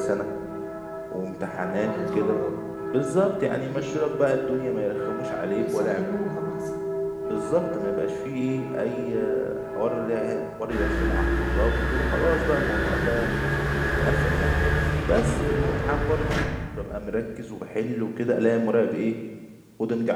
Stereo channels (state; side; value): identical; both; correlation 1.00